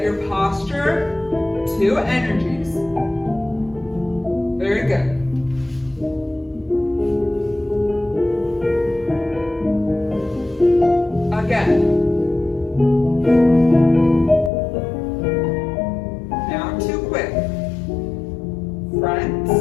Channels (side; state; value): right; drops out; at 14.5 s